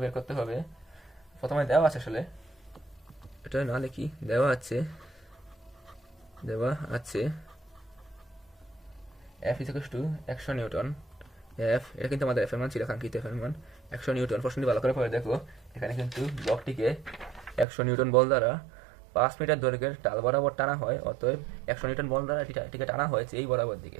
বের করতে হবে, প্রথমে দেওয়া আছে, আসলে এটা না লিখি, দেওয়া আছে F = 100 নিউটন। এটা কিন্তু আমাদের এফ এর মান ছিল, কাঙ্ক্ষিত এফ এর মান 100 নিউটন। প্রশ্নটি ভালো করে পড়ে দেখো, এখানে কিন্তু ব্লকটিকে 100 নিউটন বল দ্বারা 5 মিটার দৈর্ঘ্যের ডাল বরাবর টানা হয়। অতএব 100 নিউটন বল দ্বারা এটিকে টানা হয়েছে এই বরাবর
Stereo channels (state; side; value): drops out; left; at 17.7 s